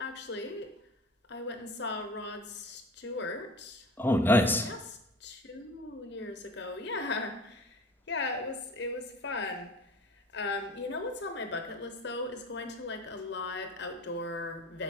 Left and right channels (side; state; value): both; normal; correlation 0.41